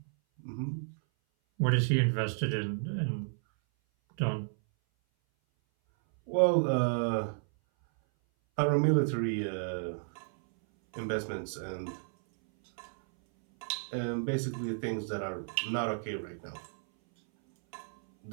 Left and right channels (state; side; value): silent; left; 56 dB below the other